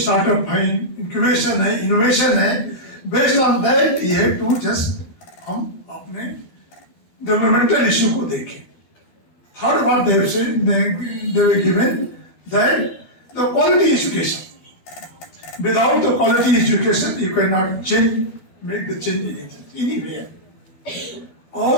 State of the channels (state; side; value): late; right; 12 ms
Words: है, इंक्यूबेशन है, इनोवेशन है, based on that you have to just हम अपने डेवलपमेंटल इश्यू को देखें. थर्ड बात they were given that the quality education. Without the quality education, you cannot change, make the change anywhere.